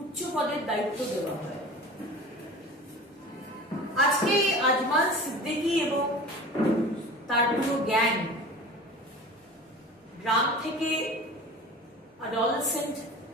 উচ্চ পদের দায়িত্ব দেওয়া হয়। আজকে আজমাল সিদ্দিকী এবং তার পুরো গ্যাং গ্রাম থেকে অ্যাডোলেসেন্ট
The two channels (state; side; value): normal; both; correlation 0.38